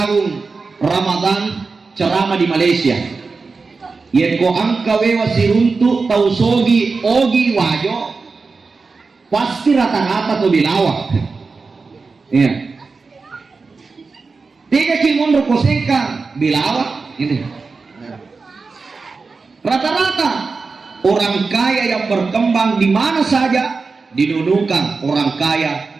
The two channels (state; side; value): quieter; left; 4.3 dB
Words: Ramadan ceramah di Malaysia. Yeko angkawe wasiruntu Tausogi ogi wajo pasti rata-rata to Belawa. Ya. Tiga kimun rokosengka Belawa ini. Rata-rata orang kaya yang berkembang di mana saja didudukan orang kaya